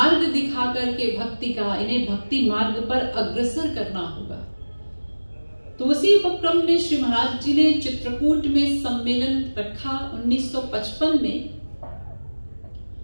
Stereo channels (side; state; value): both; inverted; correlation -1.00